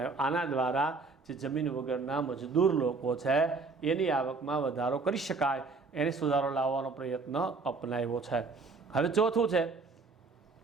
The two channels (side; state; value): left; quieter; 4.1 dB